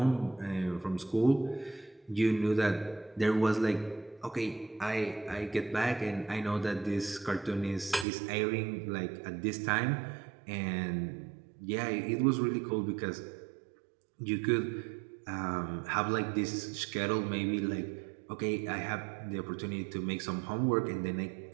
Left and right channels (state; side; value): drops out; left; at 8.1 s